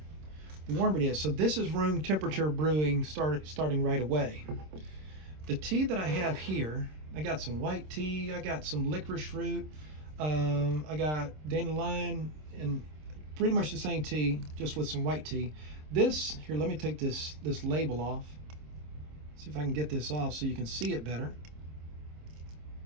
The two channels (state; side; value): late; left; 26 ms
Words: warmer it is. So this is room temperature brewing starting right away. The tea that I have here, I got some white tea, I got some licorice root, I got dandelion, and pretty much the same tea, just with some white tea. This, here, let me take this label off. See if I can get this off so you can see it better.